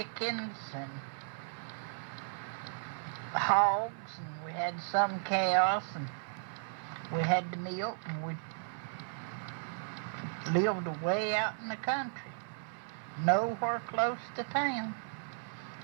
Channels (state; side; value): silent; left; 54 dB below the other